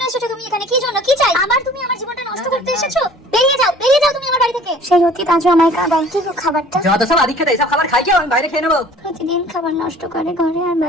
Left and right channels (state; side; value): normal; both; correlation 0.50